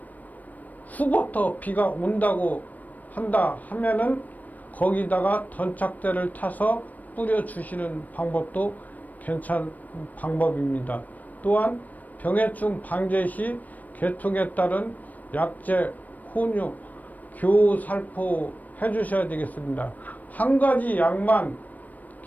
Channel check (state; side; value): late; right; 0.079 ms